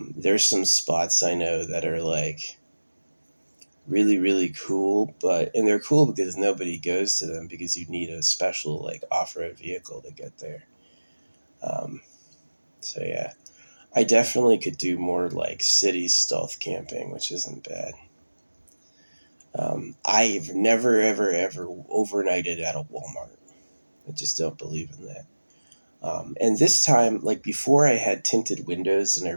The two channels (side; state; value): both; inverted; correlation -1.00